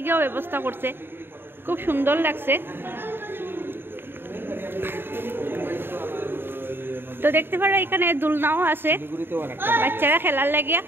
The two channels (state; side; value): late; left; 0.10 ms